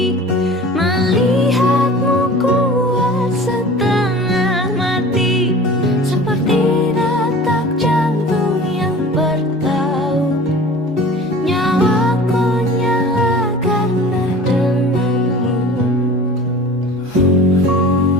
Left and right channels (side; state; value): both; normal; correlation 0.41